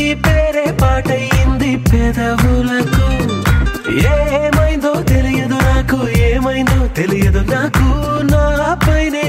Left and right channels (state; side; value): identical; both; correlation 1.00